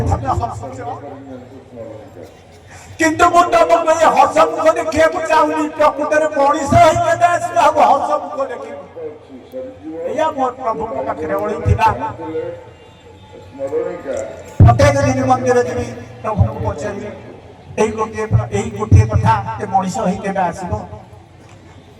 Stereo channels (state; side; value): identical; both; correlation 1.00